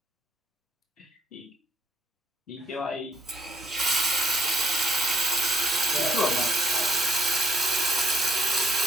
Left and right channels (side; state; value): both; normal; correlation 0.69